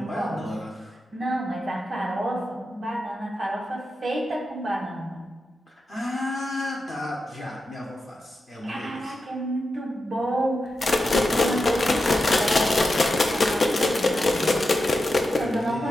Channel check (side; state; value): both; normal; correlation 0.89